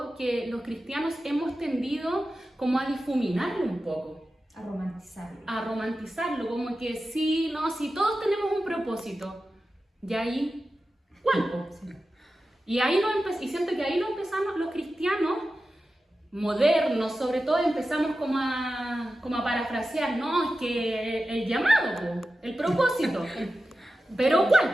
que los cristianos hemos tendido como a difuminarlo un poco, A romantizarlo. a romantizarlo, como que sí, no, si todos tenemos un propósito, y ahí, ¿cuál? Po? Y siento que ahí lo empezamos los cristianos modernos, sobre todo empezamos como a parafrasear, no, es que el llamado, po, el propósito, pero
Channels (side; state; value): both; normal; correlation 0.93